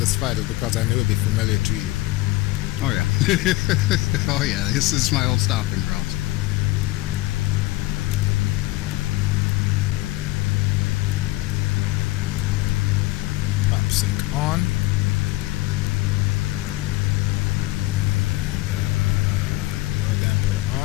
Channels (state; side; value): quieter; right; 18.9 dB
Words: flight is because I knew it'd be familiar to you. Oh, yeah. Oh, yeah. This is my old stopping grounds. Pop sync on. Lower damper